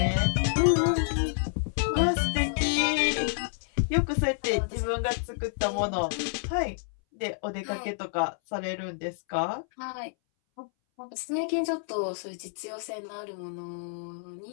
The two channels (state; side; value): silent; right; 59 dB below the other